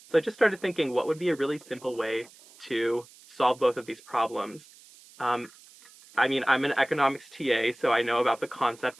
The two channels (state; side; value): noise; right; hiss, 24 dB below the sound